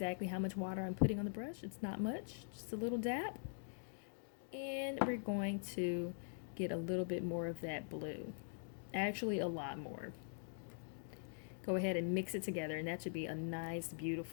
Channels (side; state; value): right; silent; digital silence